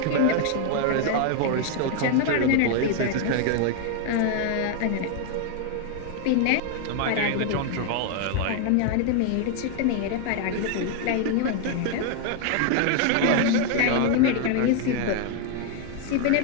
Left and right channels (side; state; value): both; different; correlation 0.00